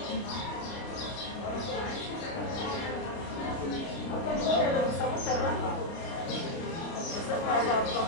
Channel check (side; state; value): right; late; 30 ms